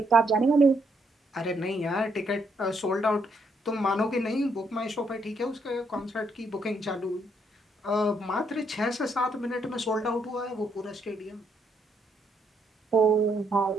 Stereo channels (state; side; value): normal; both; correlation 0.74